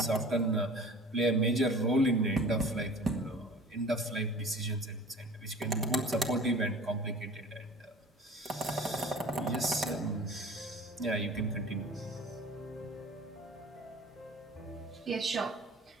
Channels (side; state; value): both; normal; correlation 0.43